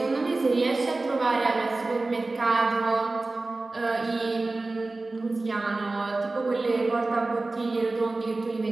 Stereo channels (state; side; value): quieter; left; 3.3 dB